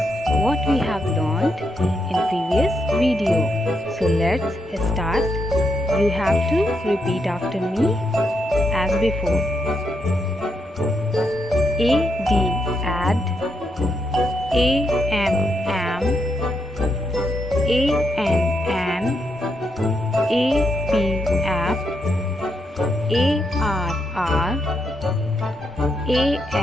what we have learned in previous video. So let's start. You have to repeat after me as before. Add, am, an, app, arr,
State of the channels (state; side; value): normal; both; correlation 0.81